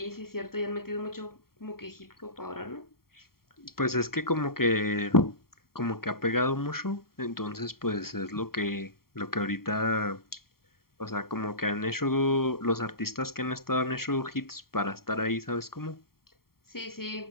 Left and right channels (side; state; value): right; late; 0.93 ms